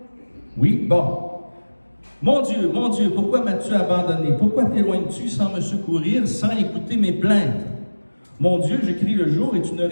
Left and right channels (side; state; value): both; inverted; correlation -1.00